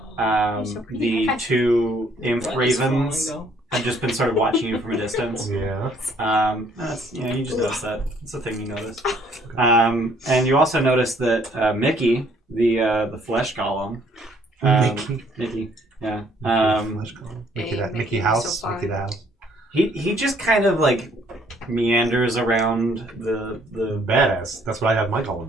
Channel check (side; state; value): both; normal; correlation 0.63